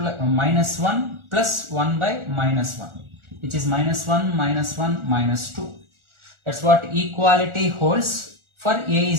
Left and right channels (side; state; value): left; late; 1.4 ms